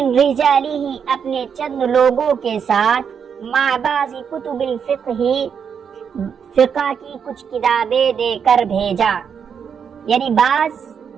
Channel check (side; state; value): left; quieter; 7.1 dB